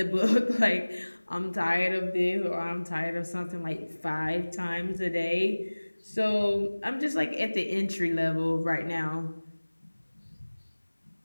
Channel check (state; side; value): inverted; both; correlation -1.00